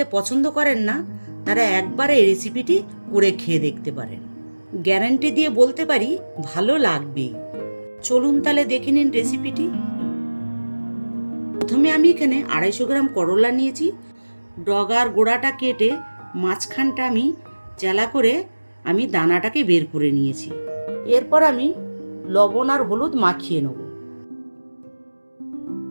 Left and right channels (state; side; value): inverted; both; correlation -1.00